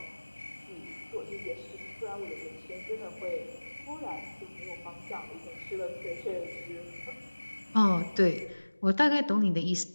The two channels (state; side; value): inverted; both; correlation -1.00